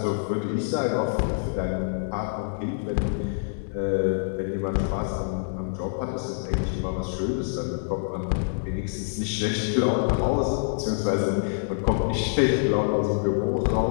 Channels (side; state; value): right; silent; digital silence